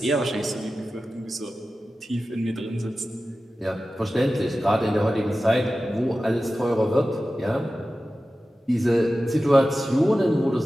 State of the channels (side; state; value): both; normal; correlation 0.94